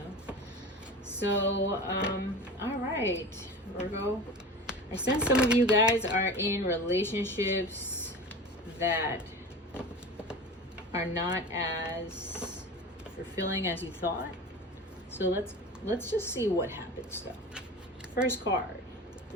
So, alright, Virgo. I sense some of you guys are in relationships that are not as fulfilling as you thought. So let's just see what happens though. First card,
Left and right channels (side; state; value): both; normal; correlation 0.33